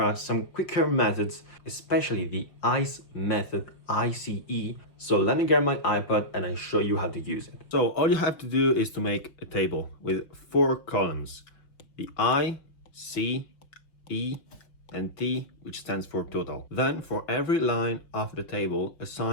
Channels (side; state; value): right; late; 5.6 ms